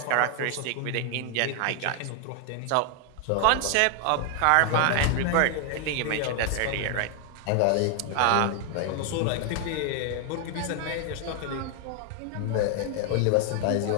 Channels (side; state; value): both; different; correlation 0.00